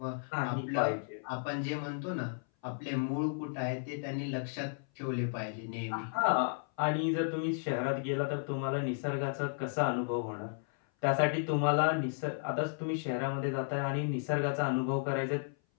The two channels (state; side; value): silent; right; 55 dB below the other